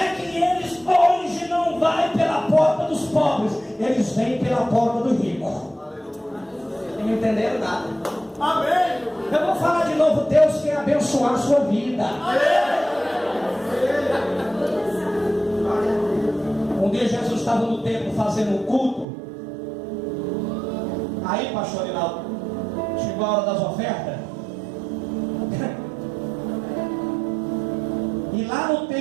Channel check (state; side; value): drops out; left; at 19.1 s